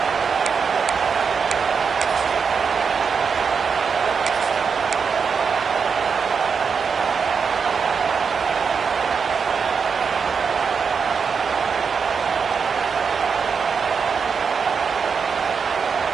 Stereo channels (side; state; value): left; quieter; 5.9 dB